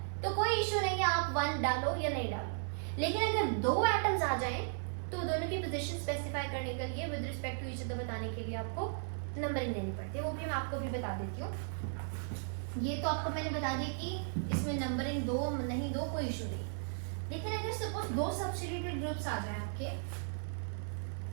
तो कोई इश्यू नहीं है आप 1 डालो या नहीं डालो। लेकिन अगर 2 एटम्स आ जाएं तो दोनों की पोजीशन स्पेसिफाई करने के लिए with respect to each other बताने के लिए आपको नंबरिंग देनी पड़ती है, वो भी मैं आपको भी बता देती हूँ। ये तो आपको मैंने बता दिया कि इसमें नंबरिंग 2 नहीं दो कोई इशू नहीं। लेकिन अगर सपोज 2 सब्स्टिट्यूटेड ग्रुप्स आ जाए आपके,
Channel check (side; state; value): left; silent; 54 dB below the other